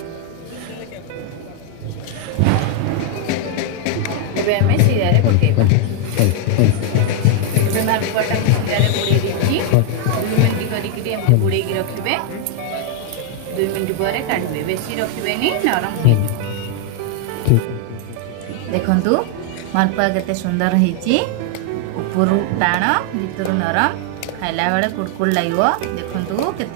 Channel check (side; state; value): both; different; correlation 0.00